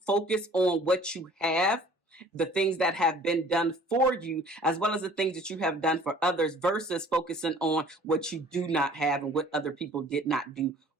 on what you have, the things that have been done for you, as well as the things that you have done for others, versus focusing on what you do not have and what other people did not do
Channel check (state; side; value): normal; both; correlation 0.51